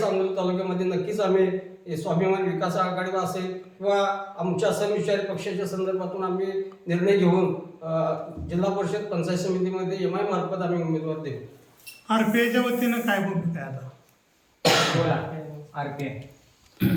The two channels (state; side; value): identical; both; correlation 1.00